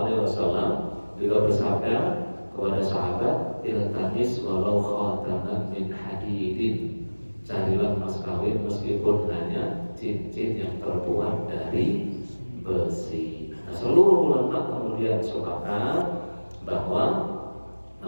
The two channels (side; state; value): both; inverted; correlation -1.00